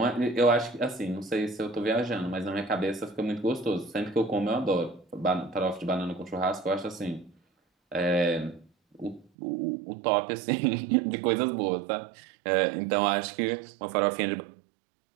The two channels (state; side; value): drops out; left; at 9.3 s